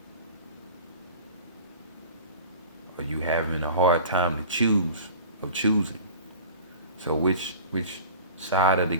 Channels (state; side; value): inverted; both; correlation -0.39